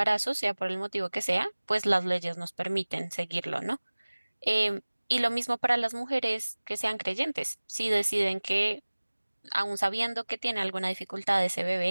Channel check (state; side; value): inverted; both; correlation -1.00